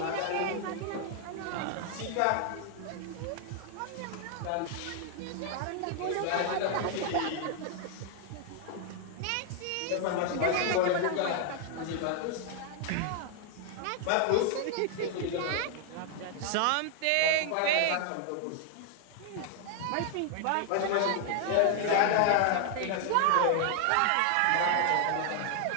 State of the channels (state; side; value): different; both; correlation 0.00